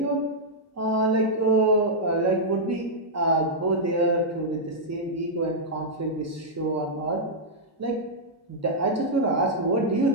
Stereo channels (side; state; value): both; normal; correlation -0.07